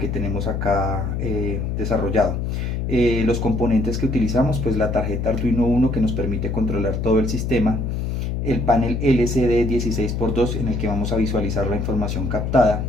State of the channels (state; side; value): noise; left; hum, 2 dB below the sound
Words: tenemos acá desarrollado. Los componentes que utilizamos, pues la tarjeta Arduino Uno, que nos permite controlar todo el sistema, el panel LCD 16x2 en el que vamos a visualizar la información captada,